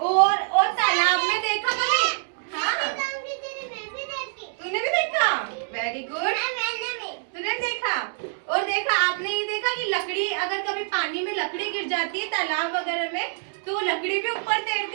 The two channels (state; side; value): silent; left; digital silence